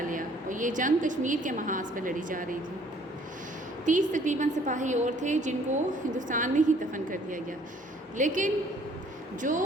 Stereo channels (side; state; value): both; normal; correlation 0.59